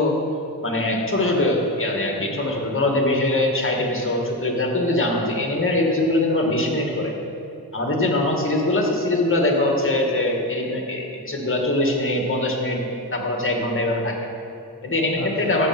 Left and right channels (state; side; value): normal; both; correlation 0.15